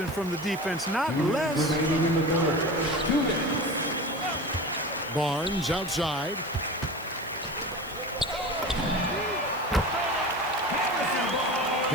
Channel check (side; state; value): right; noise; hiss, 19 dB below the sound